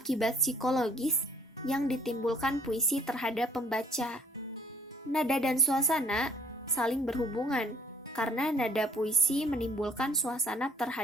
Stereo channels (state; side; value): normal; both; correlation 0.58